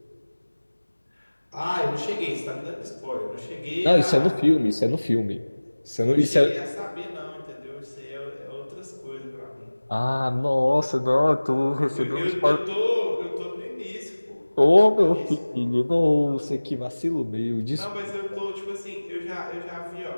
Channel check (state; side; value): inverted; both; correlation -1.00